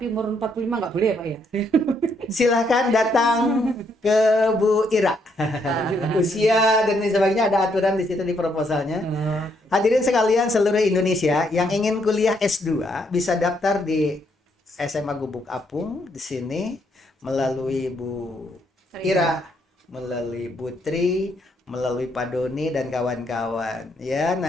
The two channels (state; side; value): normal; both; correlation 0.73